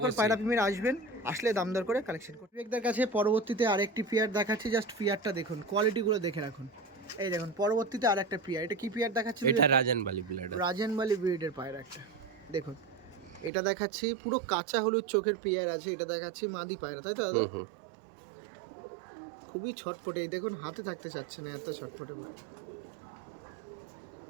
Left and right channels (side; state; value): left; drops out; at 13.5 s